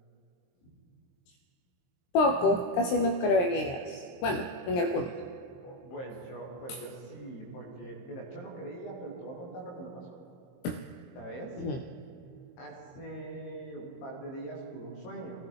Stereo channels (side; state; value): right; late; 23 ms